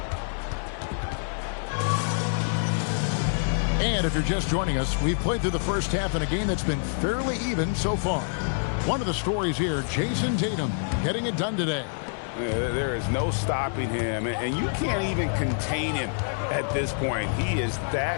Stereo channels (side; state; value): right; silent; digital silence